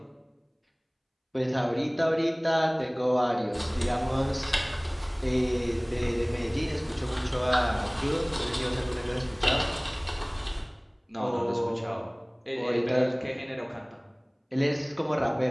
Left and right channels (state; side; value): identical; both; correlation 1.00